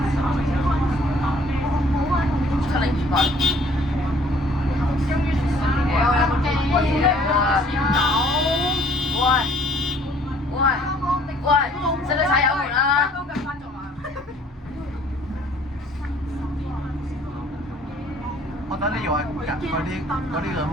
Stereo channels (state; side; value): normal; both; correlation 0.58